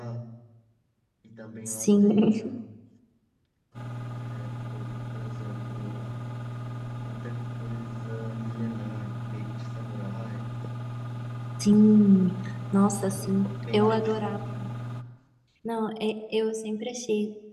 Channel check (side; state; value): both; identical; correlation 1.00